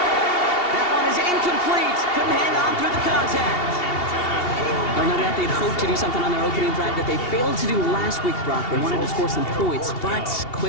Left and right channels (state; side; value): late; right; 2.8 ms